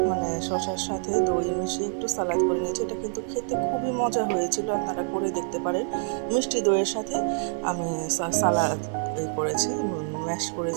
মানে শসার সাথে দই মিশিয়ে একটু সালাদ করে নিয়েছি। এটা কিন্তু খেতে খুবই মজা হয়েছিল, আপনারা করে দেখতে পারেন। মিষ্টি দইয়ের সাথে আমি সালাদ করেছি, ম্যাশ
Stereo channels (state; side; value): silent; left; 61 dB below the other